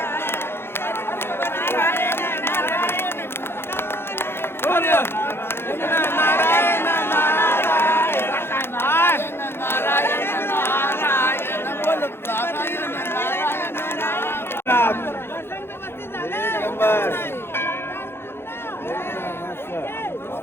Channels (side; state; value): right; late; 0.11 ms